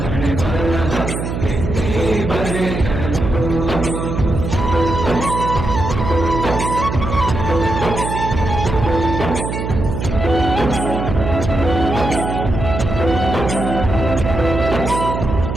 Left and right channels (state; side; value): noise; right; hum, 4 dB below the sound